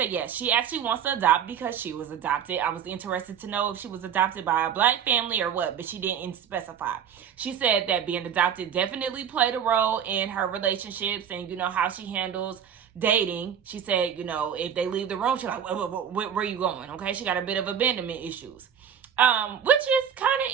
yes, she actually wants to adopt because she was adopted. I was interested to know if she was adopted by a black family or what, but she didn't specify. She said that being adopted definitely played a role in her relationships and, how she handles dating. She said, if they leave the room, she's like, where are you going? Okay, she got a bit of abandonment issues, which is kind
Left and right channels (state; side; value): quieter; left; 8.4 dB